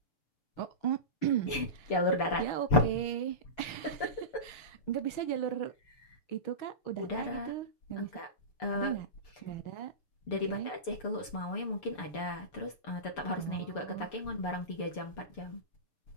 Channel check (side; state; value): right; late; 6.8 ms